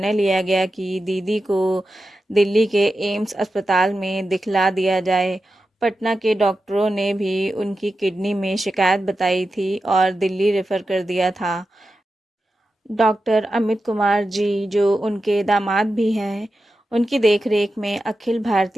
लिया गया कि दीदी को दिल्ली के एम्स अस्पताल में दिखला दिया जाए। पटना के डॉक्टरों ने भी उनकी किडनी में शिकायत बताई थी और दिल्ली रेफर कर दिया था। डॉक्टर अमित कुमार जी, जो उनके दामाद भी हैं, उनकी देखरेख में अखिल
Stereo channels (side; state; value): both; normal; correlation 0.91